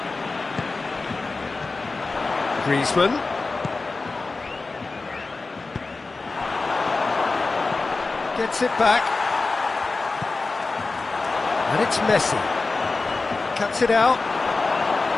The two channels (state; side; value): quieter; right; 3.7 dB